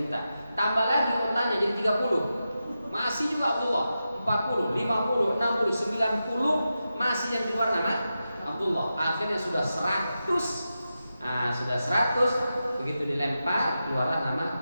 unta. Tambah lagi ontanya jadi 30. Masih juga Abdullah. 40, 50, 60, 90 masih yang keluar nama Abdullah. Akhirnya sudah 100. Sudah 100, begitu dilempar keluarlah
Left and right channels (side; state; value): both; inverted; correlation -0.91